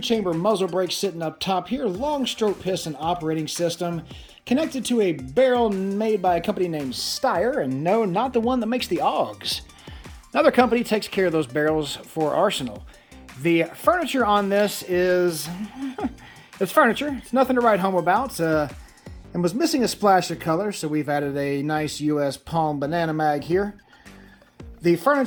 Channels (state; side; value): identical; both; correlation 1.00